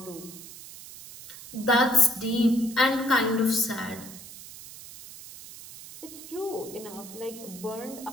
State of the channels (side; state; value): right; noise; hiss, 15 dB below the sound